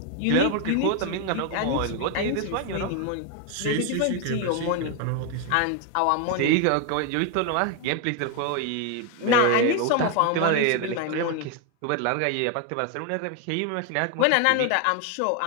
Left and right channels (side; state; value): both; different; correlation 0.01